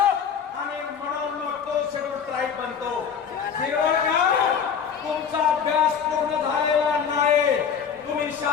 आणि म्हणून मग तो शेड्यूल ट्राईब बनतो। तुमचा अभ्यास पूर्ण झालेला नाही, तुम्ही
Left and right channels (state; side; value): quieter; right; 7.1 dB